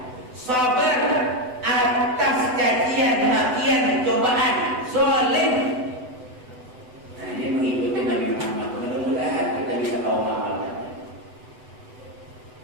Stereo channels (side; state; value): left; late; 7.9 ms